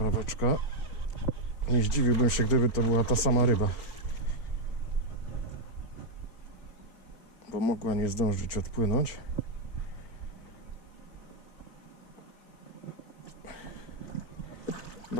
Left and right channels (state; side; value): late; right; 4.4 ms